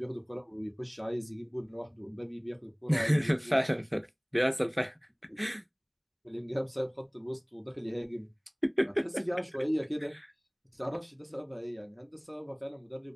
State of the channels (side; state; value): both; identical; correlation 1.00